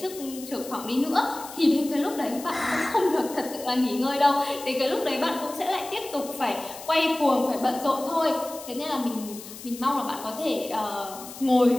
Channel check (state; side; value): noise; left; hiss, 14 dB below the sound